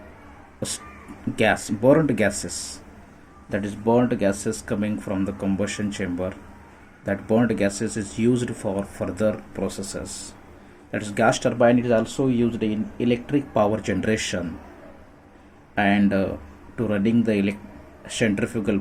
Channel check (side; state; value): both; identical; correlation 1.00